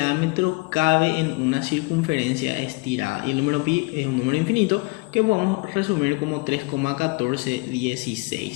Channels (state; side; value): quieter; right; 26.7 dB